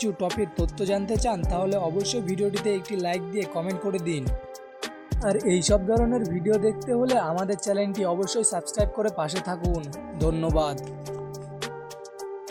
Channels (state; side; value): identical; both; correlation 1.00